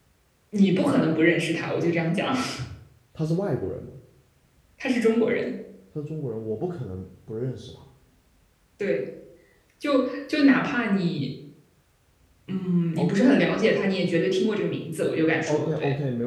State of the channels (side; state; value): both; identical; correlation 1.00